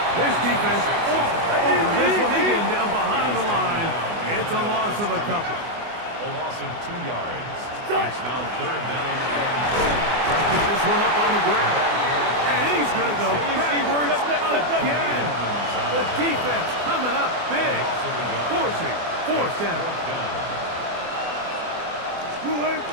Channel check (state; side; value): late; left; 24 ms